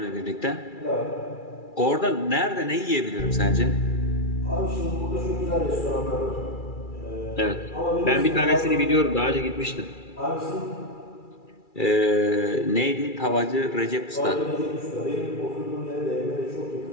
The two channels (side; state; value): right; late; 2.3 ms